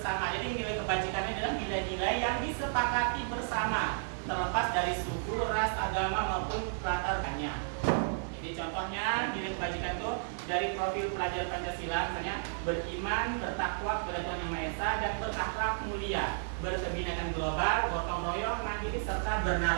Jadi nilai kebajikannya adalah nilai-nilai yang disepakati bersama, terlepas dari suku, ras, agama maupun latar belakangnya. Jadi contohnya nilai kebajikan itu dari profil pelajar Pancasila, misalnya beriman, bertakwa kepada Tuhan Yang Maha Esa, dan berakhlak mulia, berkebinekaan global, gotong royong, mandiri, serta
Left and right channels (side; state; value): left; silent; digital silence